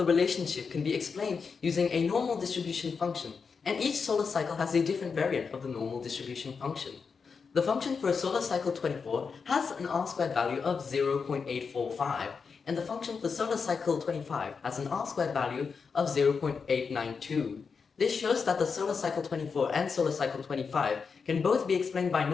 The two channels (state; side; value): quieter; right; 5.5 dB